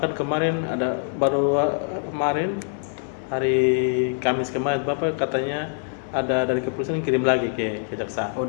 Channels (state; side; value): silent; right; 62 dB below the other